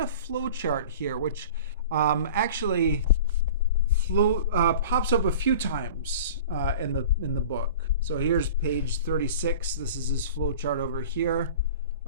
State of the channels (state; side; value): inverted; both; correlation -0.39